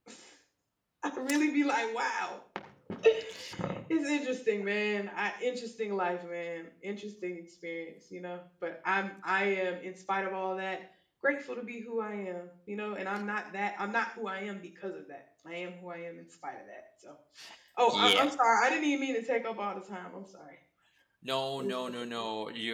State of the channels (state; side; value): identical; both; correlation 1.00